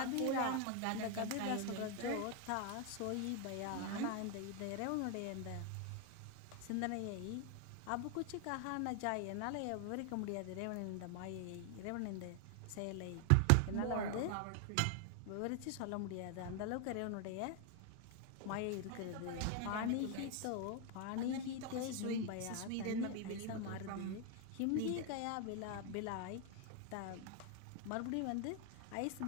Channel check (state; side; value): different; both; correlation 0.01